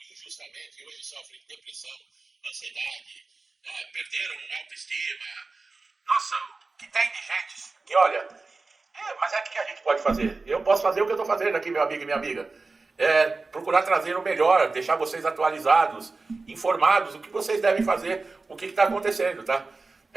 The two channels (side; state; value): left; quieter; 3.8 dB